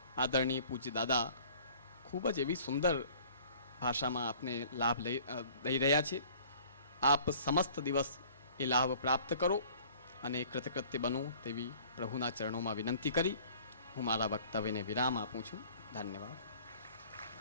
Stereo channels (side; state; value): both; inverted; correlation -0.51